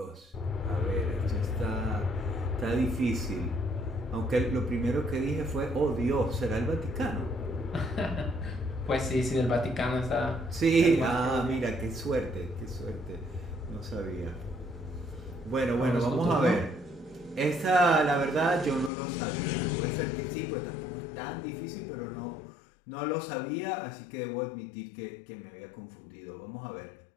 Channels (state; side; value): drops out; right; at 18.9 s